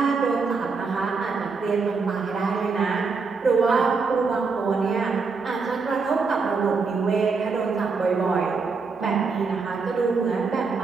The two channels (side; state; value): left; quieter; 4.7 dB